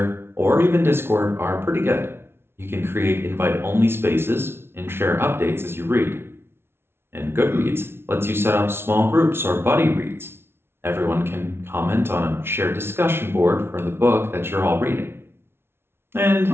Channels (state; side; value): late; left; 0.12 ms